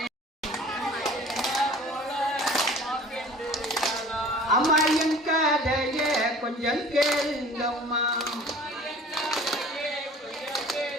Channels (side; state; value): both; normal; correlation 0.46